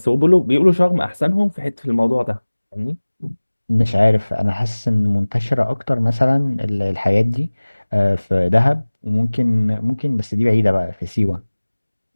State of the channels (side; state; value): both; inverted; correlation -1.00